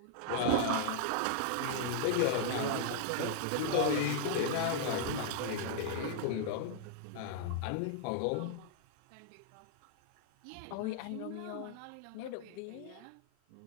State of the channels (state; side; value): different; both; correlation -0.01